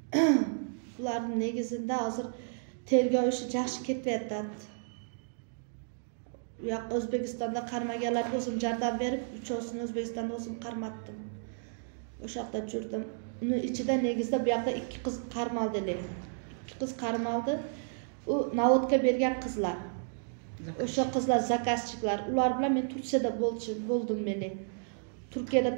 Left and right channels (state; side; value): silent; left; digital silence